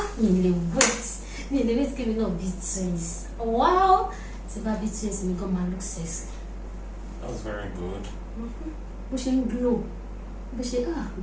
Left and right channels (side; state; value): both; identical; correlation 1.00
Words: mi lè wait kí mi náà bí twins. Wow! Tí bá bí twins mi gan máa look sexy. That's very good. Bó ṣe ń glow bó ṣe